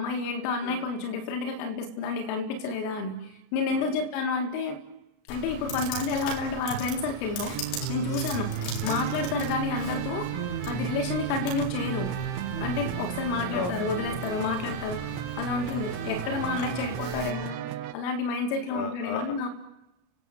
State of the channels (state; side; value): late; right; 33 ms